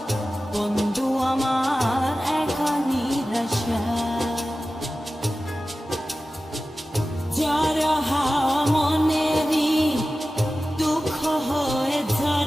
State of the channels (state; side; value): normal; both; correlation 0.95